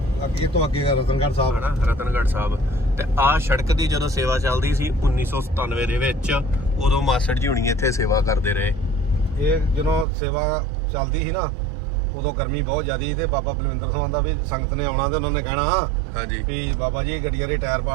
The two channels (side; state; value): left; drops out; at 10.1 s